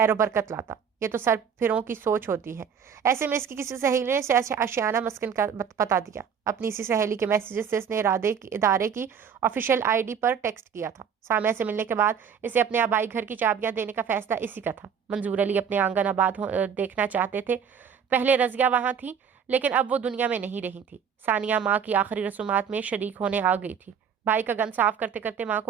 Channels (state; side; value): quieter; left; 7.3 dB